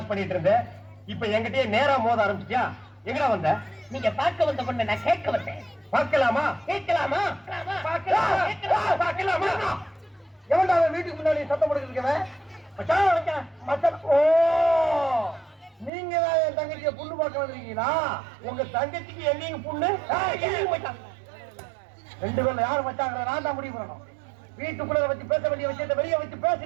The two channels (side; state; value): left; drops out; at 15.9 s